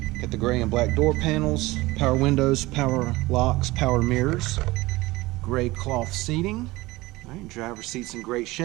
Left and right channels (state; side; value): quieter; left; 20.2 dB